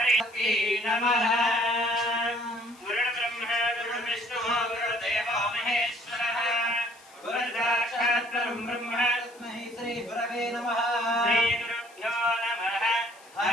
నమః. గురు బ్రహ్మ గురు విష్ణు గురు దేవో మహేశ్వరః గురు సాక్షాత్ పరం బ్రహ్మ తస్మై శ్రీ గురవే నమః. శ్రీ గురుభ్యో నమః.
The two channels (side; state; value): left; noise; hiss, 25 dB below the sound